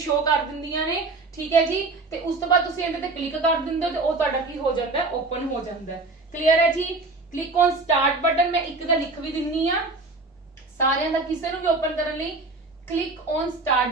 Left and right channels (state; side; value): quieter; left; 3.4 dB